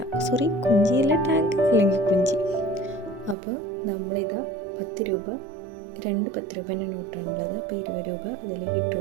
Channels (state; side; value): drops out; left; at 3.4 s